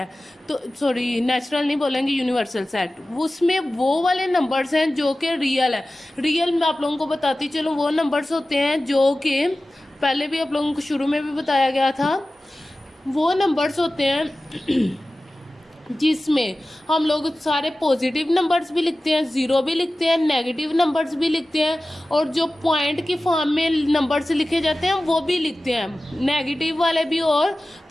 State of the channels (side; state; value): both; normal; correlation 0.96